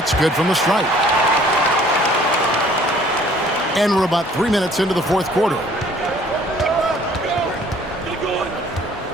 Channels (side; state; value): both; normal; correlation 0.56